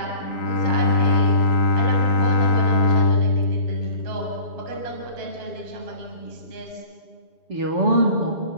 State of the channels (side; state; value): left; late; 7.1 ms